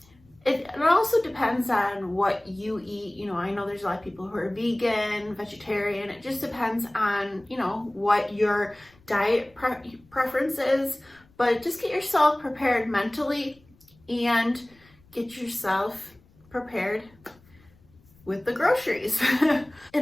It also depends on what you eat. I know there's a lot of people who are vegan, vegetarian. It just depends on, what your diet preference is. But just get yourself prepared mentally and get yourself prepared with the groceries.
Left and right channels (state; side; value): noise; left; rumble, 29 dB below the sound